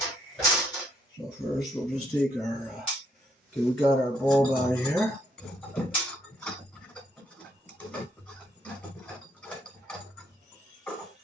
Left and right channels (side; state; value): both; normal; correlation 0.71